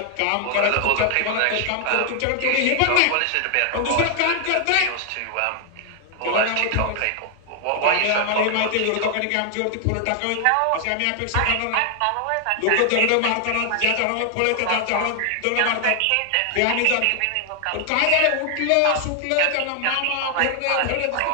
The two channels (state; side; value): different; both; correlation 0.00